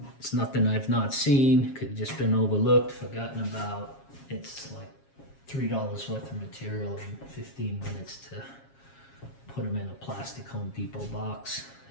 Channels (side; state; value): right; late; 7.3 ms